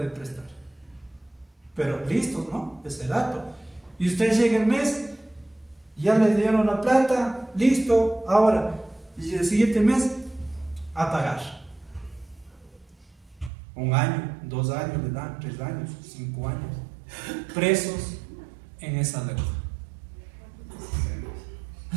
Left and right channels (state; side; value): drops out; left; at 13.5 s